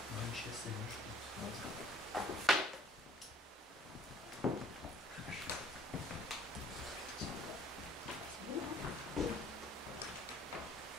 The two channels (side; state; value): both; normal; correlation 0.58